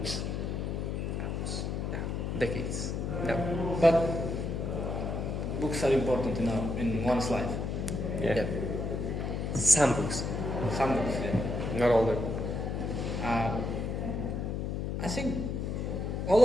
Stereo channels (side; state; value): left; noise; hum, 2 dB below the sound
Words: decades. No. But books are important in one's life. Yeah. Some books, Some books, yeah. not all the. I think